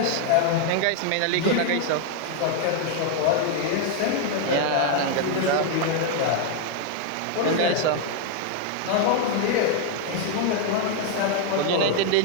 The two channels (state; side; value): different; both; correlation 0.00